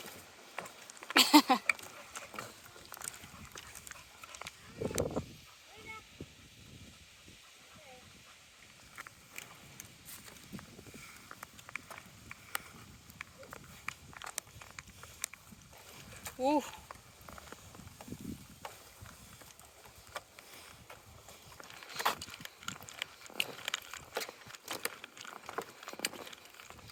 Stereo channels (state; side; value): identical; both; correlation 1.00